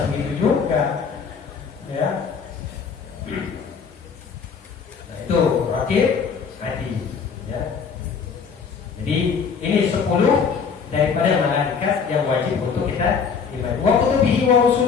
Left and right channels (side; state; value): right; quieter; 6.0 dB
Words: begitu juga. Ya. Itu rakib hati, ya. Jadi ini 10 daripada malaikat yang wajib untuk kita imani. Wa kutubihi wa